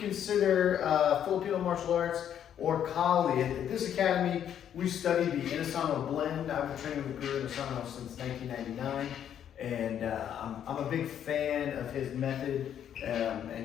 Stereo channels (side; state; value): right; quieter; 9.6 dB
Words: Filipino martial arts or Kali. At this academy, we study the Inosanto blend. I've been training with Guro Joe since 1999, and I'm a big fan of his method